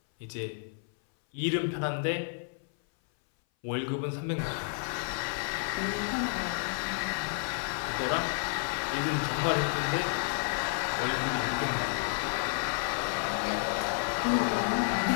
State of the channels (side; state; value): right; silent; 57 dB below the other